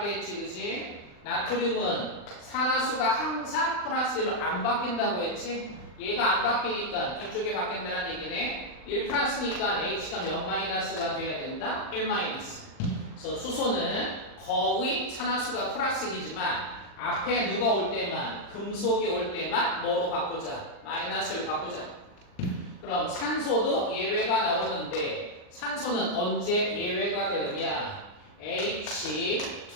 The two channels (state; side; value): late; right; 39 ms